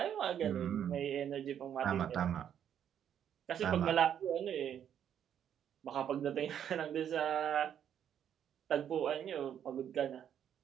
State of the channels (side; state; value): left; quieter; 9.3 dB